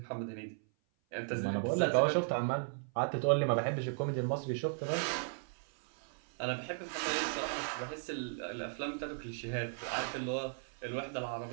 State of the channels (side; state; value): left; silent; 54 dB below the other